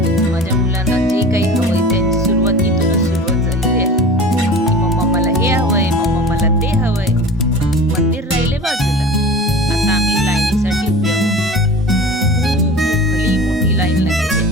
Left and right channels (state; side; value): normal; both; correlation 0.38